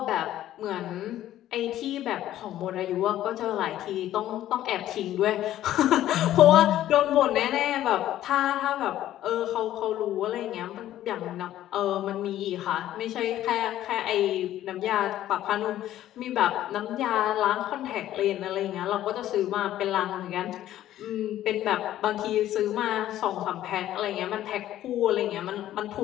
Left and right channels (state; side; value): quieter; right; 13.0 dB